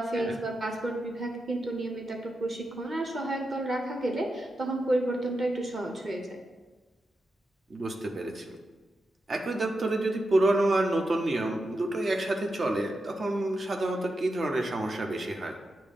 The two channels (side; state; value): both; normal; correlation 0.88